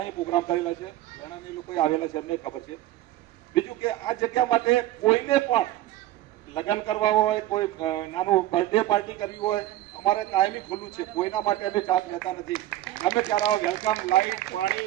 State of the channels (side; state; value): left; quieter; 14.7 dB